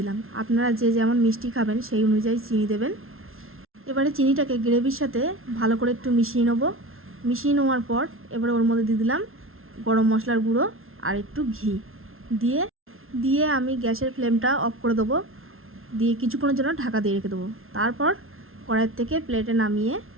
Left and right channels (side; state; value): left; late; 0.61 ms